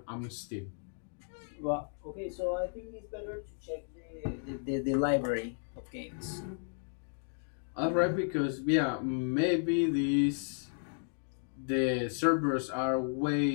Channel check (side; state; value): right; silent; digital silence